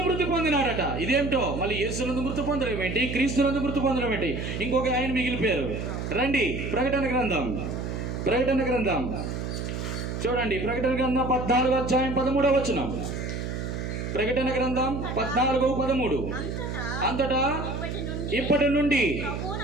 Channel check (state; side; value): noise; right; hum, 4 dB below the sound